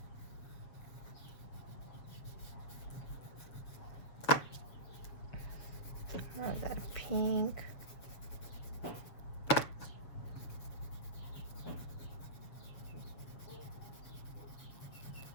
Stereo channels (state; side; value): late; right; 7.1 ms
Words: Add that pink.